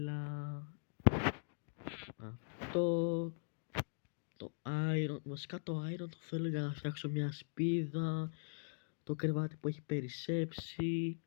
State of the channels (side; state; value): right; silent; digital silence